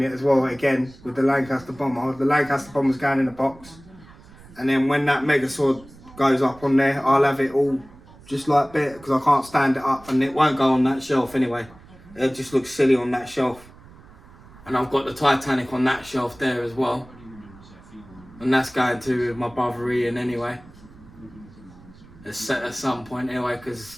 as well again with the Lancaster bomber. The Lancaster bomber's going in the box, and then when that Megazord goes up on there, I'll have it all just like that, because I can't stand it up, and it won't go on that shelf anyway. It just looks silly on that shelf. And I've got the Titanic on that shelf there as well, and that's going to my brother Ian anyway. It's set at some point anyway, because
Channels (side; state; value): right; noise; rumble, 22 dB below the sound